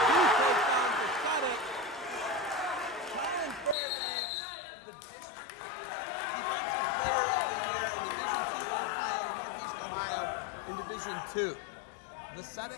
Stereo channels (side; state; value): right; drops out; at 3.8 s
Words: 2 touchdowns for Vucetic. Collin Fairbanks, the district defensive player of the year in Division II Ohio, Northeast Ohio, in Division II.